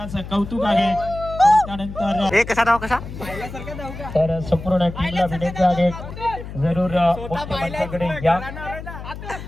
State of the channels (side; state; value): left; noise; hum, 11 dB below the sound